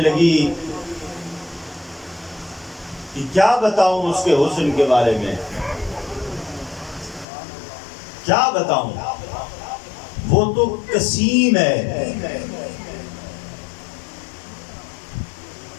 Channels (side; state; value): right; drops out; at 7.2 s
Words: کہ کیا بتاؤں اس کے حسن کے بارے میں، کیا بتاؤں، وہ تو قسیم ہے،